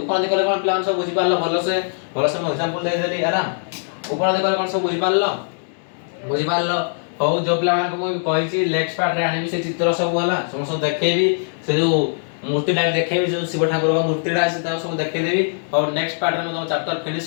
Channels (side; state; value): right; silent; 64 dB below the other